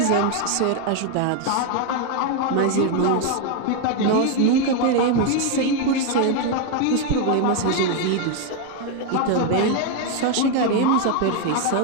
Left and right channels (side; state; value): both; different; correlation 0.01